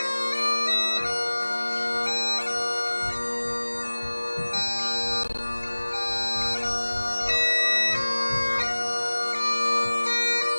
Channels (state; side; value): inverted; both; correlation -1.00